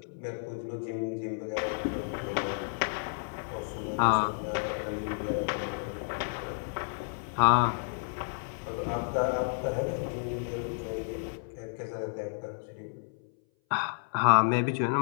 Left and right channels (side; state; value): right; silent; 57 dB below the other